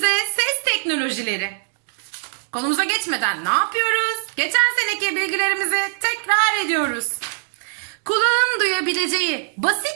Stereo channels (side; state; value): left; silent; digital silence